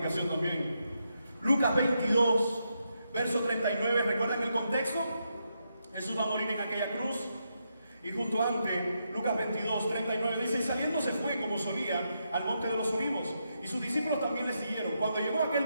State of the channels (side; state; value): both; inverted; correlation -0.82